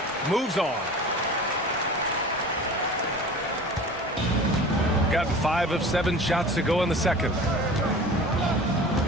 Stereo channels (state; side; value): normal; both; correlation 0.39